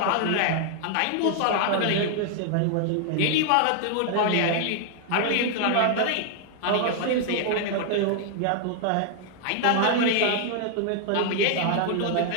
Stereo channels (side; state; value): both; different; correlation 0.00